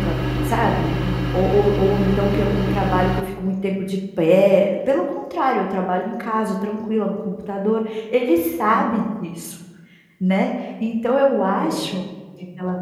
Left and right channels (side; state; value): both; identical; correlation 1.00